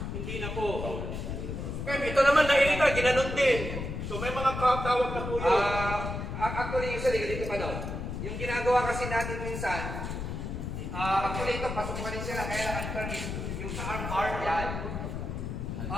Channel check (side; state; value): left; noise; rumble, 5 dB below the sound